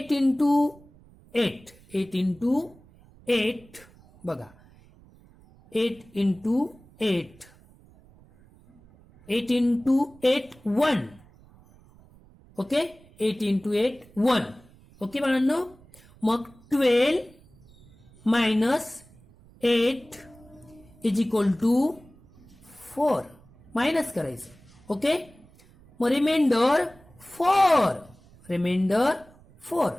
इंटू 8 8 इंटू 8 बघा 8 into 8 8 into 8 1. Okay 8 into 8 1. Okay बाळांनो. मग 12 minus 8 is equal to 4. Minus करायचं. ओके मग remainder 4.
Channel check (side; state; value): right; noise; rumble, 26 dB below the sound